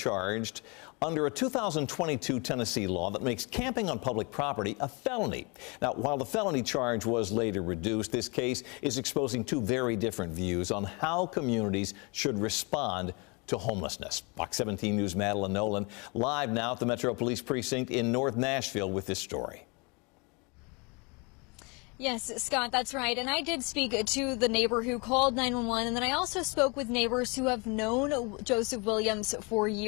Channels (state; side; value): quieter; right; 30.3 dB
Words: under a 2022 Tennessee law that makes camping on public property a felony. Now, while the felony charge was later reduced, this case is exposing two very different views on how communities should respond to homelessness. Fox 17 News' Madeline Nolan live now at the Metro Police Precinct in North Nashville with this story. Yes, Scott, that's right. And I did speak to the neighbor who called 911, and then I also spoke with neighbors who have known Joseph Williams for